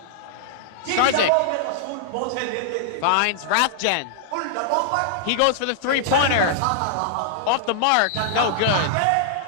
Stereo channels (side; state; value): both; different; correlation -0.01